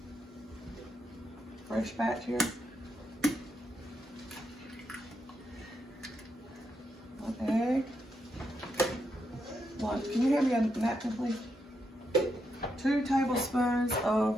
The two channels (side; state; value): both; normal; correlation 0.81